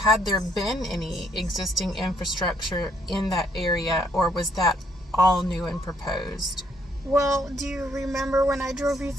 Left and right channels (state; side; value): normal; both; correlation 0.69